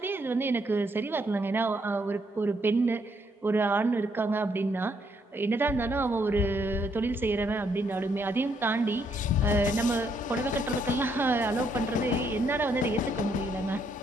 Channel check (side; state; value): both; normal; correlation 0.73